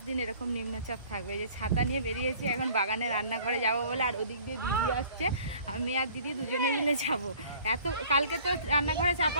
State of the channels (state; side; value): inverted; both; correlation -0.52